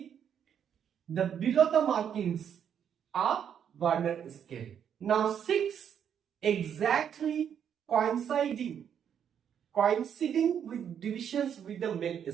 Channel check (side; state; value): left; quieter; 8.5 dB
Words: the below the markings are Vernier scale. Now 6 exactly coinciding with divisions with the main